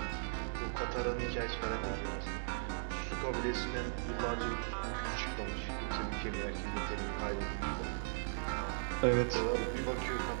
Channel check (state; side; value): silent; left; digital silence